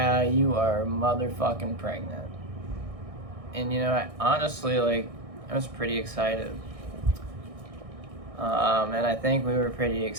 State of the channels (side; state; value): left; late; 1.6 ms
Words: you are motherfucking pregnant. And, honestly, like, I was pretty excited. And I think we were pretty